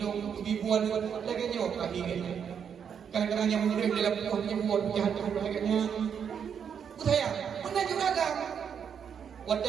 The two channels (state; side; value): quieter; left; 7.6 dB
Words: ribuan lagi nyoh kaki ni. Kadang-kadang yang murid dalam punya buat jahat tu lagi-nya. Saya mana juga kan. Waktu